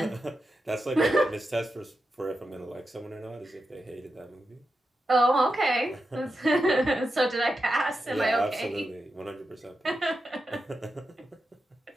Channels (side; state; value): both; normal; correlation 0.89